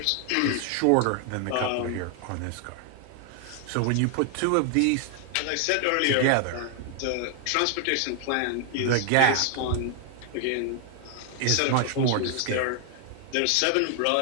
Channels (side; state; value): both; different; correlation 0.00